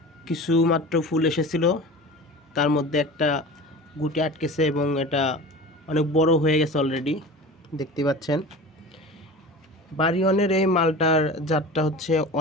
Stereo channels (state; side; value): normal; both; correlation 0.35